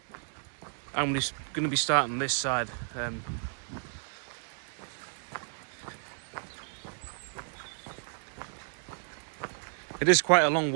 I'm just going to be starting this side. It is quite a long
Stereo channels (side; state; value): left; silent; 56 dB below the other